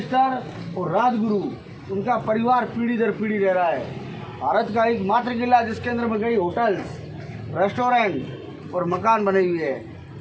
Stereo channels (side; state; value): both; identical; correlation 1.00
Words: और राजगुरु, उनका परिवार पीढ़ी दर पीढ़ी रह रहा है। भारत का एक मात्र किला जिसके अंदर में कई होटल्स, रेस्टोरेंट और मकान बने हुए हैं।